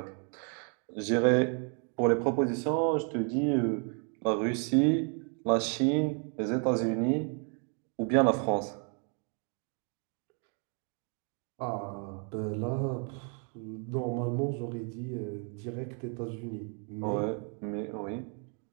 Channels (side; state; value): left; quieter; 39.8 dB